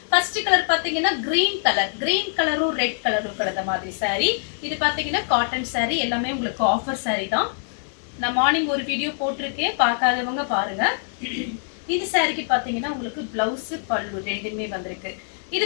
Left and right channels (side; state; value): right; silent; digital silence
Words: ஃபர்ஸ்ட் கலர் பாத்தீங்கன்னா கிரீன் கலர். கிரீன் கலரும் ரெட் கலரும் கலந்த மாதிரி சாரி. இது பாத்தீங்கன்னா காட்டன் சாரி. எல்லாமே உங்களுக்கு ஆஃபர் சாரி தான். நான் மார்னிங் ஒரு வீடியோ போட்டிருக்கேன், பார்க்காதவங்க பாருங்க. இந்த சாரிக்கு பாத்தீங்கன்னா உங்களுக்கு பிளவுஸ் பல்லு ரெண்டுமே வந்திருக்கு. இது